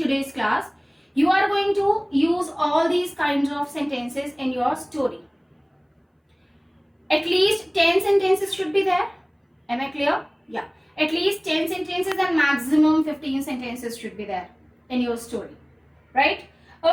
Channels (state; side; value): identical; both; correlation 1.00